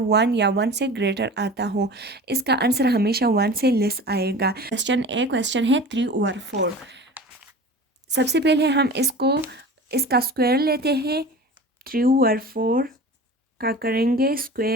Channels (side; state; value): both; normal; correlation 0.37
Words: या 1 से ग्रेटर आता हो। इसका आंसर हमेशा 1 से लेस आएगा। क्वेश्चन है 3/4। सबसे पहले हम इसका स्क्वायर लेते हैं। 3/4 का करेंगे